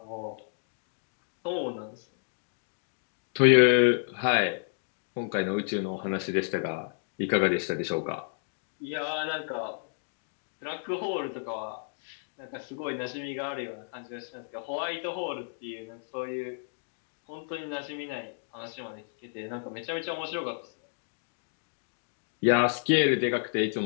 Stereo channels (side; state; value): right; silent; digital silence